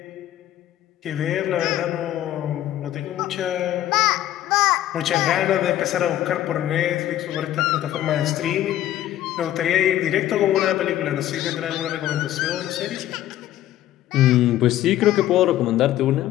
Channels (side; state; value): right; quieter; 13.1 dB